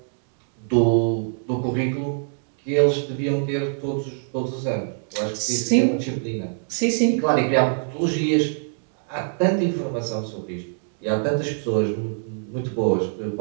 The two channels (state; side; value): silent; left; digital silence